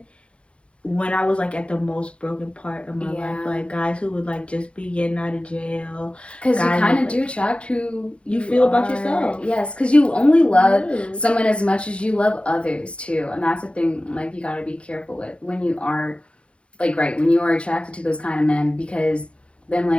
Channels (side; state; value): right; late; 0.059 ms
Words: when I was like at the most broken part of my life, like guys who would like just be getting out of jail. Because you kind of do attract who you feel about yourself. Yes, because you only love someone as much as you love others too, and that's the thing. Like, you got to be careful with when you are, like, when you are attracted to those kind of men, because then